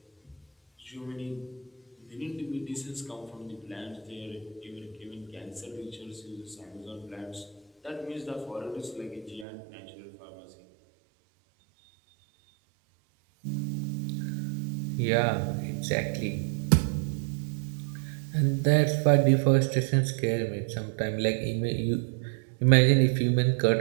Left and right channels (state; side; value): drops out; left; at 9.5 s